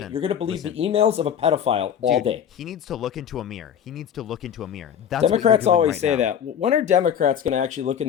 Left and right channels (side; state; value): right; quieter; 8.8 dB